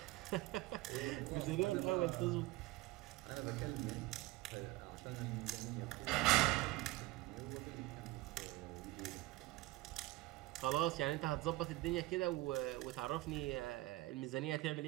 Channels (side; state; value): left; quieter; 19.1 dB